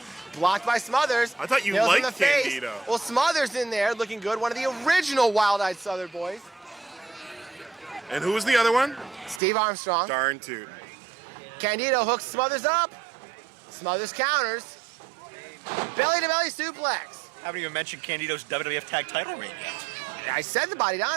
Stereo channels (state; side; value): drops out; left; at 9.4 s